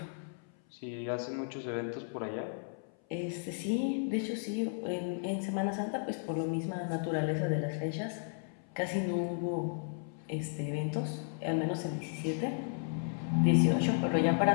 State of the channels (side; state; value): right; silent; 55 dB below the other